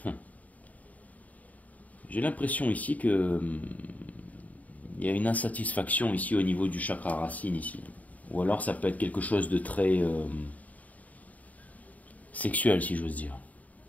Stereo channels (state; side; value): late; right; 0.072 ms